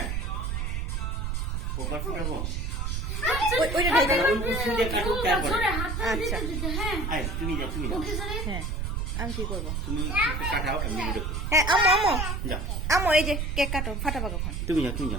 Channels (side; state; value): right; noise; rumble, 1 dB below the sound